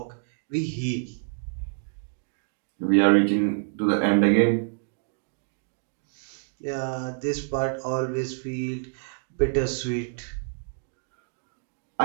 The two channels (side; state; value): left; silent; digital silence